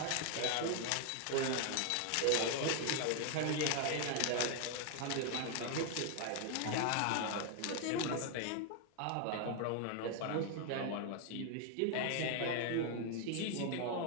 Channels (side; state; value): both; different; correlation 0.00